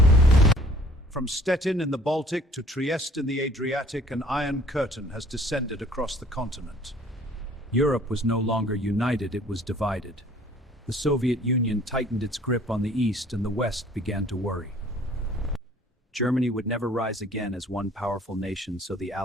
From Stettin in the Baltic to Trieste in the Adriatic, an iron curtain has descended across the continent. Europe was no longer united, it was divided. The Soviet Union tightened its grip on the East, and the West began to worry. Germany would never rise again as one powerful nation, so the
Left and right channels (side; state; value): both; normal; correlation 0.55